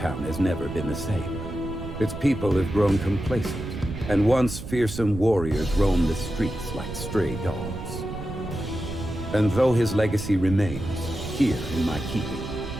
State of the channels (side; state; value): right; noise; rumble, 9 dB below the sound